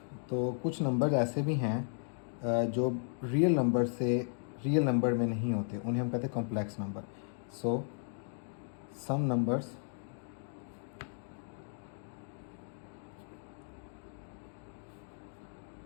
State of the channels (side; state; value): right; silent; digital silence